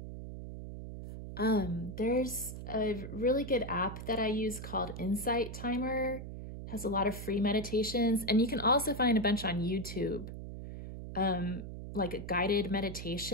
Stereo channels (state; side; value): noise; right; hum, 9 dB below the sound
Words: There's a really good app that I use called Insight Timer. Has a lot of free meditations, and you can also find a bunch on YouTube. like a guided